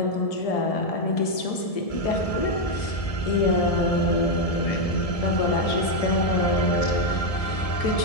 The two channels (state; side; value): late; right; 1.7 ms